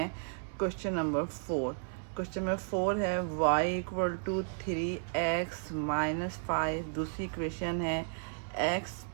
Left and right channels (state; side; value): silent; left; 55 dB below the other